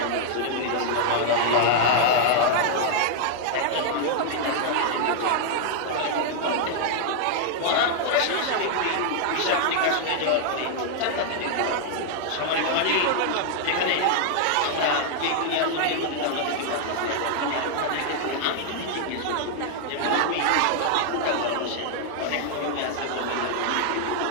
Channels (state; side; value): different; both; correlation -0.01